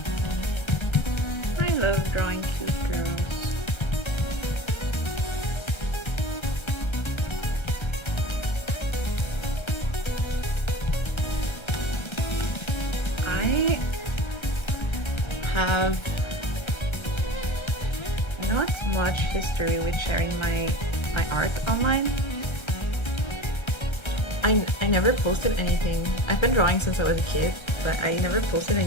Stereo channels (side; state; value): right; late; 1.3 ms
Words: I love drawing cute girls. I have not much history with sharing my art online. I never posted anything. I've been drawing since I was a kid, but I never posted